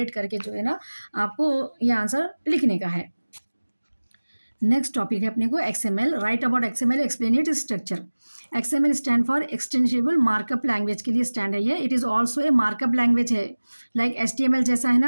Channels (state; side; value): inverted; both; correlation -1.00